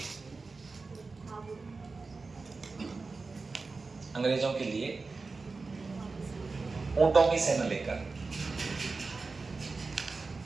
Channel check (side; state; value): left; quieter; 4.0 dB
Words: अंग्रेजों के लिए ऊंटों की सेना लेकर,